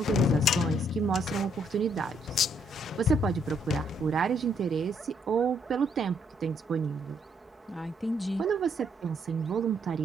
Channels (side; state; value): both; normal; correlation 0.71